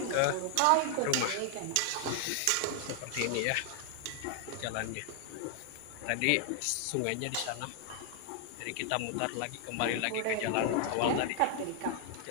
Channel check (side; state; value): both; different; correlation 0.00